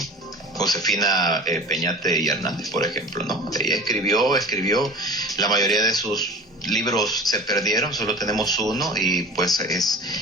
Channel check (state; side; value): normal; both; correlation 0.39